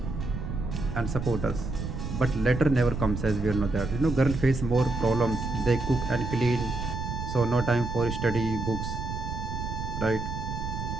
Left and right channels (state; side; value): noise; right; rumble, 5 dB below the sound